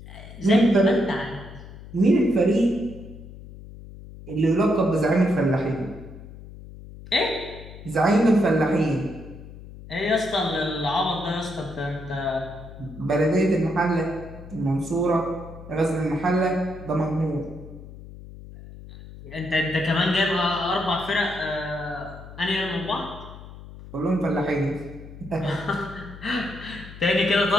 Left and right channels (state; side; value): noise; left; hum, 15 dB below the sound